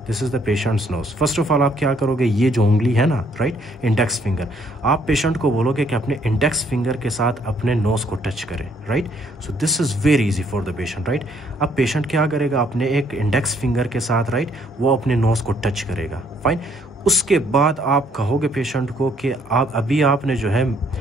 this is the patient's nose. First of all आप क्या करोगे, ये जो उंगली है ना, राइट, इंडेक्स फिंगर, आप पेशेंट को बोलोगे कि अपने इंडेक्स फिंगर के साथ अपने नोज को टच करें, right. So this is very easy for the patient, right. अब पेशेंट क्या करेगा, अपने एक इंडेक्स फिंगर के साथ, राइट, वो अपने नोज को टच करेगा, फाइन। उसके बाद आप कहोगे पेशेंट को कि आप अभी आपने जो है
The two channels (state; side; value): normal; both; correlation 0.66